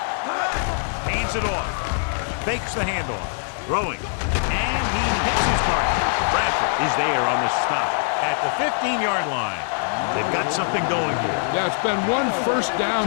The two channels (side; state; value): right; silent; digital silence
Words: Hands it off. Fakes the handoff. Throwing. And he hits his target. Bradford is there on the stop at the 15-yard line. They've got something going here. Yeah, it's been one first